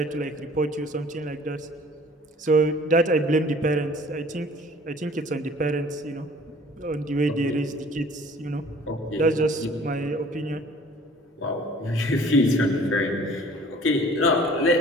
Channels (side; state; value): both; normal; correlation 0.51